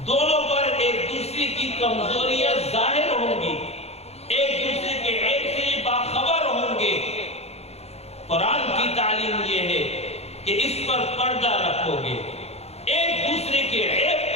دونوں پر ایک دوسرے کی کمزوریاں ظاہر ہوں گی، ایک دوسرے کے عیب سے باخبر ہوں گے. قرآن کی تعلیم یہ ہے کہ اس پر پردہ رکھو گے، ایک دوسرے کے عیب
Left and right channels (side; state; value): right; late; 0.30 ms